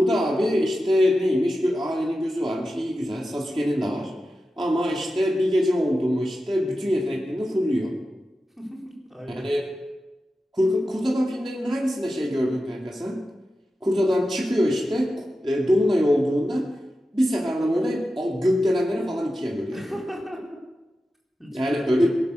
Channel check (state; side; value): normal; both; correlation 0.92